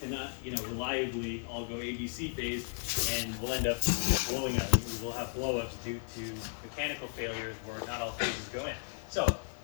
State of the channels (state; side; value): silent; right; digital silence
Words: reliably all go ABC phase, and we'll end up blowing up. We'll have blowups due to mechanical failures where not all phases go in. So